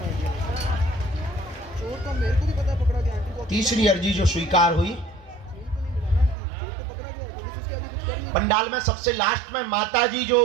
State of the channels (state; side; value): drops out; left; at 6.4 s